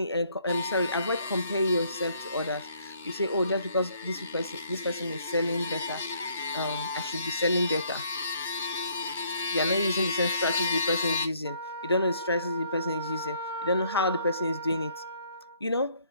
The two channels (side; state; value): both; inverted; correlation -0.66